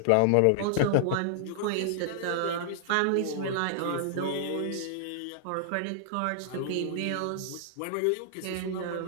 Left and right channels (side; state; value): both; different; correlation -0.01